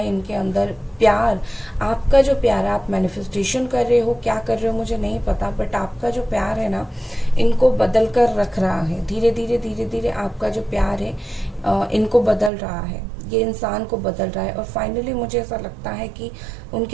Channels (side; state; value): left; drops out; at 12.5 s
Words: इनके अंदर। प्यार, आपका जो प्यार आप मैनिफेस्टेशन कर रहे हो, क्या कर रहे हो मुझे नहीं पता, बट आपका जो प्यार है ना, इनको बदल कर रख रहा है। धीरे धीरे धीरे धीरे आपका जो प्यार है इनको बदल रहा है, ये इंसान को बदल रहा है, और फाइनली मुझे ऐसा लगता है कि